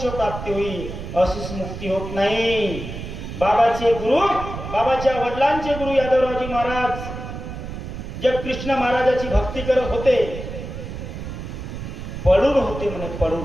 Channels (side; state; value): right; noise; rumble, 8 dB below the sound